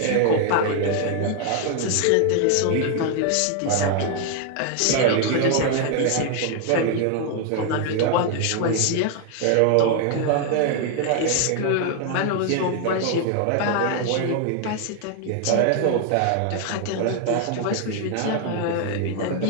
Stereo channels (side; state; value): both; different; correlation 0.00